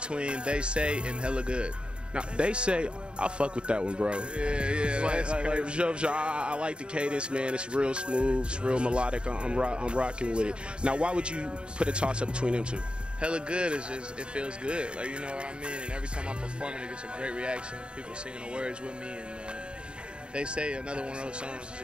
They Say and Hella Good. Now, They Say, I fuck with that one, bro. Yeah, that's crazy. I like the cadence, man. It's real smooth, it's real melodic. I'm rocking with it. Now, why would you put a toss-up between them two? Hella Good is just, it feels good. Like, you know what I mean? And every time I perform it, it gets a great reaction. People singing the words with me, and They Say, another one of those songs, is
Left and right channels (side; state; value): left; late; 0.053 ms